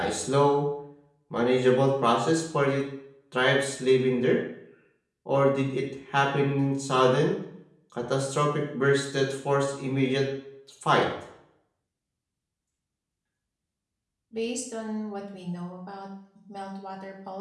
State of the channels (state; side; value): identical; both; correlation 1.00